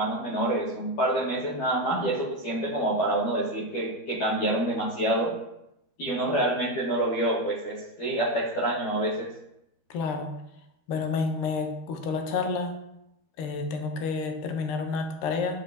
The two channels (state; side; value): late; right; 13 ms